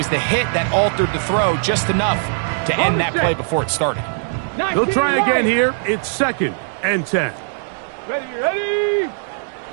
the hit that altered the throw just enough to end that play before it started. They'll try again here. It's 2nd and 10. Ready, ready,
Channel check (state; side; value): silent; left; 66 dB below the other